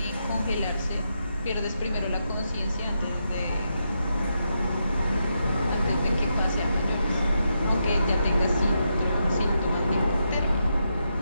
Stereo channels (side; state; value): both; inverted; correlation -0.83